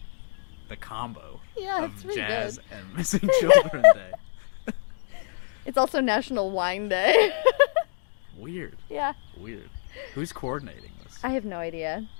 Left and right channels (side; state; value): right; silent; digital silence